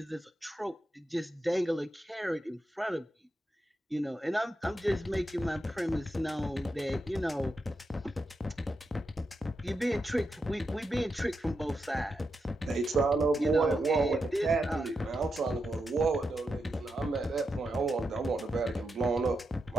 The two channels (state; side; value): normal; both; correlation 0.86